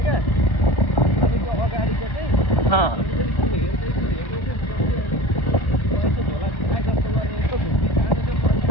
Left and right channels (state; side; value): late; right; 1.4 ms